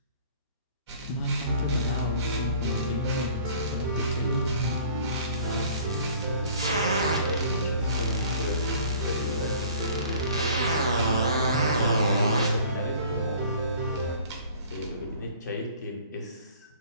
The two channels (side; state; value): both; inverted; correlation -0.51